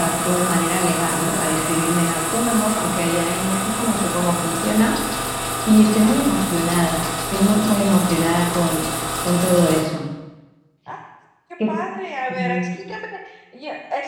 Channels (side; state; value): both; identical; correlation 1.00